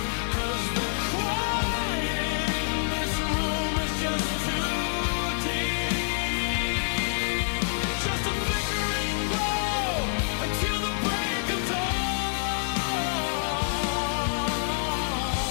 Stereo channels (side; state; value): right; silent; digital silence